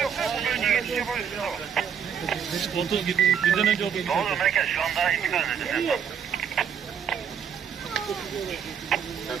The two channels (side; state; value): left; quieter; 7.6 dB